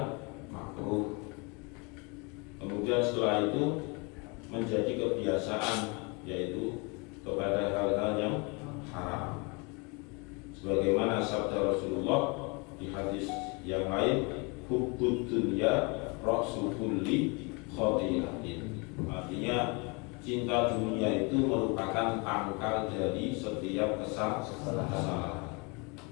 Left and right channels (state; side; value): quieter; right; 30.6 dB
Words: makruh. Kemudian setelah itu menjadi kebiasaan, yaitu kepada hal-hal yang haram. Sebagaimana sabda Rasulullah di hadis yang lain, hubbud dunya ra'su kulli khati'atin. Artinya cinta dunia itu merupakan pangkal dari setiap kesalahan.